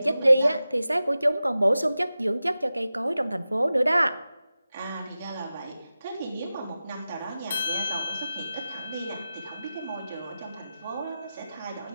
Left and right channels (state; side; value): inverted; both; correlation -0.94